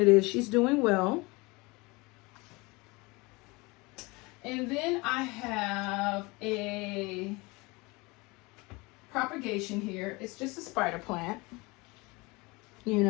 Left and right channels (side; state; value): right; quieter; 24.9 dB